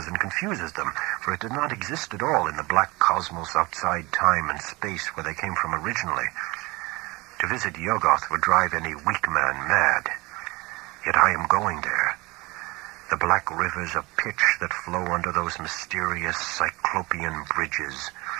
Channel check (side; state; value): left; quieter; 23.5 dB